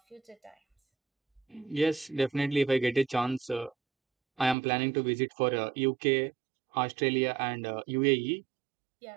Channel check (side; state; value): left; drops out; at 4.5 s